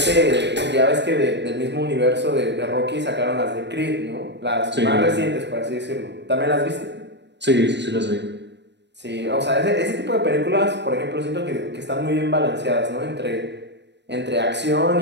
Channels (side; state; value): left; late; 0.51 ms